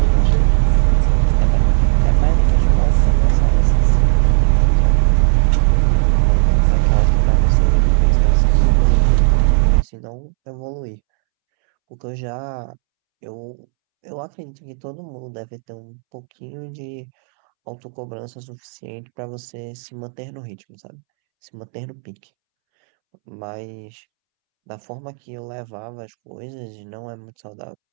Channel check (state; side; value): silent; left; 68 dB below the other